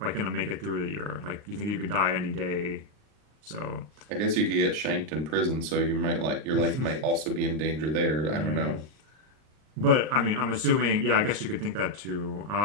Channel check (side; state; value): left; late; 39 ms